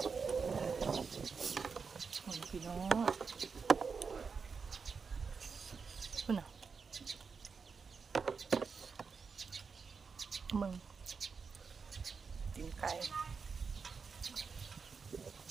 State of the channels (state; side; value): quieter; left; 5.4 dB